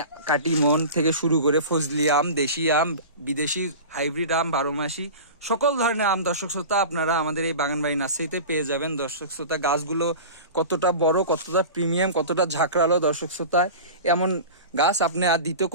কাটিমন থেকে শুরু করে ফজলি আম, দেশি আম, বিদেশি হাইব্রিড আম, 12 মাসি সকল ধরনের আম দর্শক শ্রোতা আপনারা আমাদের এই বাগানবাড়ি নার্সারিতে পেয়ে যাবেন। দর্শক শ্রোতা, গাছগুলো কতটা বড়, কতটা প্রিমিয়াম, কতটা ঝাঁকড়ালো। দর্শক শ্রোতা, এমন গাছ আপনি আর দ্বিতীয়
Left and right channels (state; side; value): inverted; both; correlation -0.33